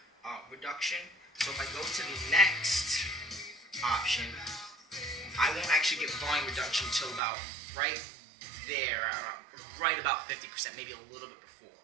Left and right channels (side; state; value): left; drops out; at 7.2 s